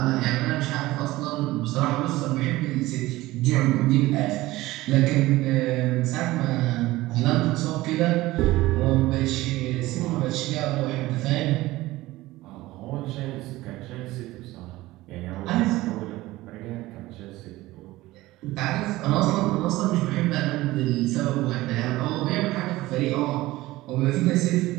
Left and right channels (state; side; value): quieter; left; 18.1 dB